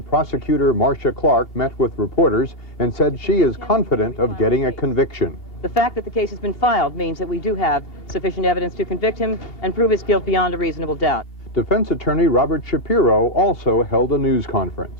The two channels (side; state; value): right; late; 2.8 ms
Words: prosecutor Marcia Clark met with reporters and said she is confident of getting a conviction. The fact that the case has been filed means that we do have sufficient evidence to convict him and prove his guilt beyond a reasonable doubt. Defense attorney Robert Shapiro also held a news